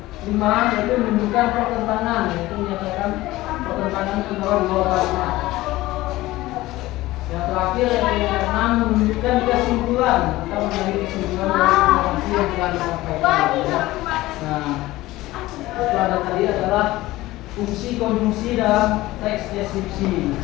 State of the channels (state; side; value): quieter; right; 17.8 dB